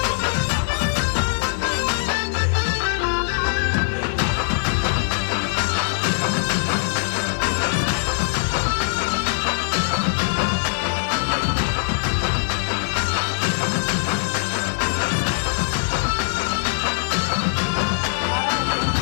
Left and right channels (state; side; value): silent; right; digital silence